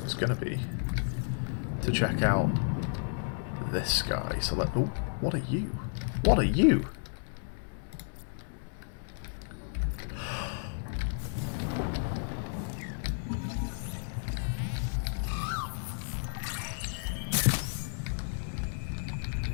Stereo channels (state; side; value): silent; right; digital silence